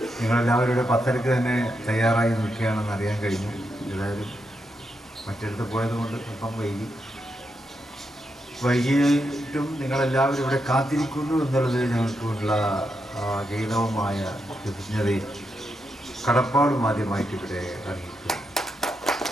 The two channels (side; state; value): both; normal; correlation 0.84